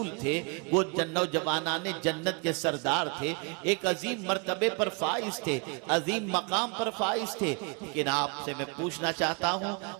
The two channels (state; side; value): quieter; left; 33.4 dB